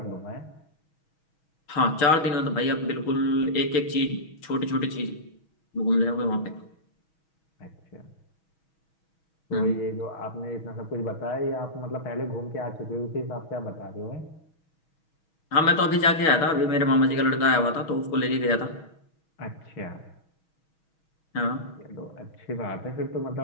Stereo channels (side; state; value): right; late; 6.3 ms